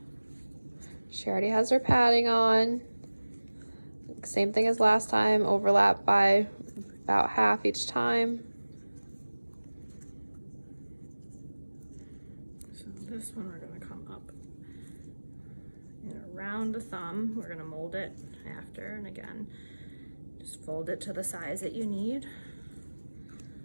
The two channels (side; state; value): both; inverted; correlation -1.00